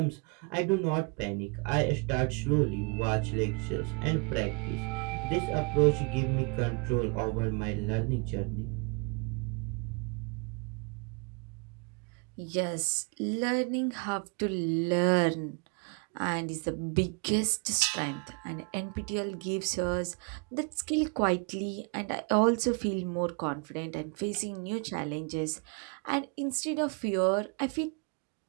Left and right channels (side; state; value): left; quieter; 34.1 dB